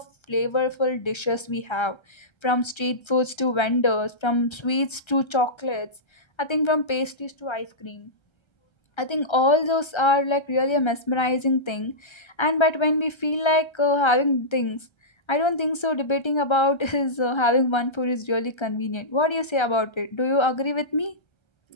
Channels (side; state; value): right; late; 1.3 ms